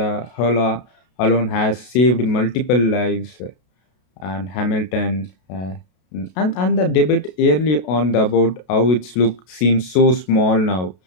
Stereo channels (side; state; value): right; late; 32 ms